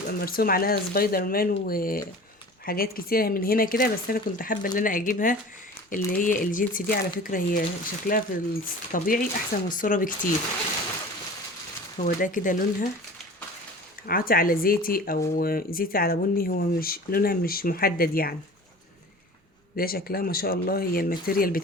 مرسوم عليها سبايدر مان وحاجات كتيره من هنا كده، بس انا كنت حابه ان انا اجيبها اللي هي الجينس دي. على فكره هي شكلها في الطبيعي احسن من الصوره بكتير. هو ده كده لونها عاطي على زيتي او زيتي على بني، هو مش لونها مش محدد يعني. ده شكلها ما شاء الله، هي الماتيريال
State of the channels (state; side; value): normal; both; correlation 0.40